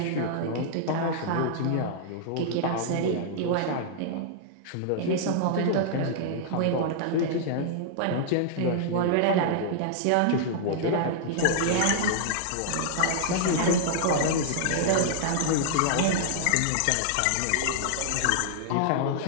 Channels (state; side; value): different; both; correlation -0.01